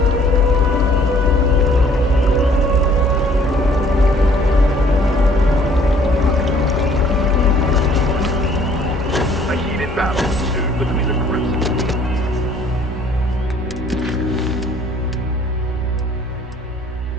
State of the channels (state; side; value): normal; both; correlation 0.58